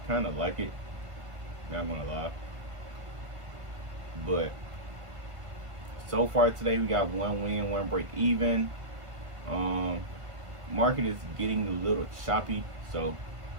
kind of like it, not gonna lie. But so far today, we got 1 win, 1 break even. Market is getting a little choppy, so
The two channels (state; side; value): late; left; 1.5 ms